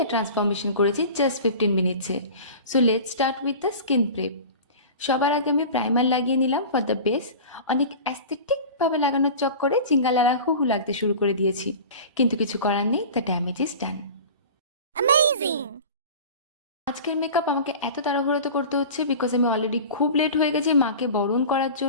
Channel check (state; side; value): inverted; both; correlation -0.36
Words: ট্রান্সফরমেশন করেছি জাস্ট 15 মিনিটসে। So let's start with the skin prep. সবার আগে আমি প্রাইমার লাগিয়ে নিলাম ফর দ্য বেস। অনেক অ্যাস্থেটিকভাবে লাগানোর চক্করে চিঙ্গালালা হু লাগতে শুরু করে দিয়েছি, কিন্তু কিছু করার নেই, দ্য ড্যামেজ ইজ ডান। আজকের মেকআপ আমাকে এত তাড়াহুড়োতে করতে হচ্ছে বিকজ আমি অলরেডি খুব লেট হয়ে গেছি মাকে বরণ করার